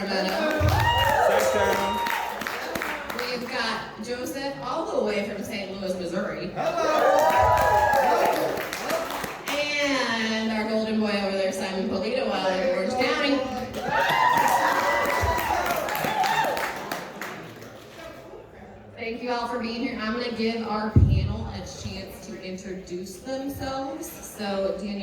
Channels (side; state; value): both; identical; correlation 1.00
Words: We've got Joseph all the way from St. Louis, Missouri. And our golden boy over there, Simon Polito, out of Orange County. Thank you all for being here. I'm going to give our panel a chance to introduce themselves. So,